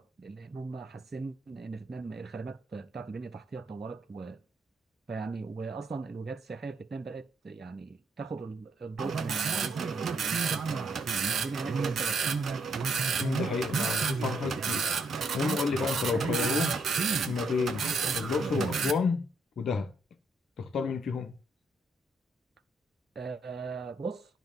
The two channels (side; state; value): both; normal; correlation 0.74